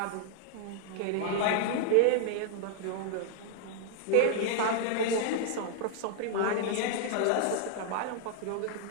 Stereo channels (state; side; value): different; both; correlation 0.00